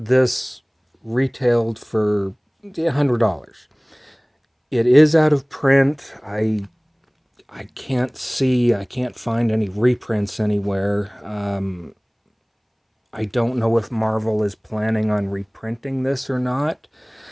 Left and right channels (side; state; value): both; identical; correlation 1.00